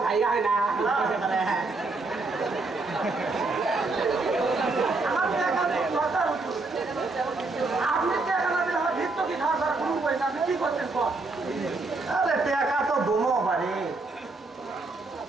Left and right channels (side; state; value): left; quieter; 3.5 dB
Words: ভাই হয় না আমার টাকা তো দরকার হতো। আপনি টাকা না দিলে আমার ভিত্ত কি খাওয়া ছাড়া কোনো উপায় না। আপনি কি করতেন কর আরে টাকা তো দমো পারে